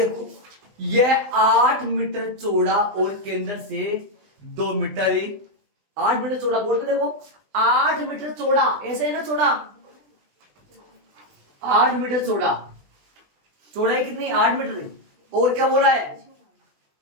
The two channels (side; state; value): left; late; 20 ms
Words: यह 8 मीटर चौड़ा और केंद्र से 2 मीटर ही, 8 मीटर चौड़ा, बोर्ड पे देखो 8 मीटर चौड़ा, ऐसे है ना चौड़ा, 8 मीटर चौड़ा, चौड़ाई कितनी 8 मीटर। और क्या बोला है,